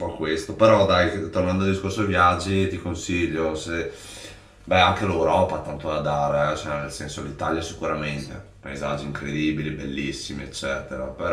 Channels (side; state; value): both; identical; correlation 1.00